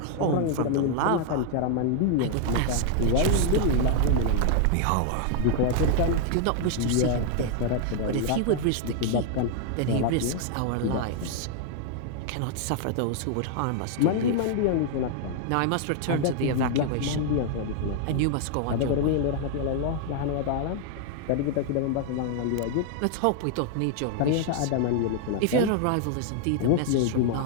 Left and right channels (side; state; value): both; different; correlation 0.00